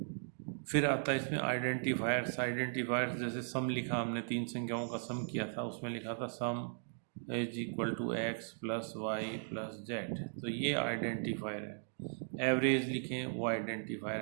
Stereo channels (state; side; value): silent; left; digital silence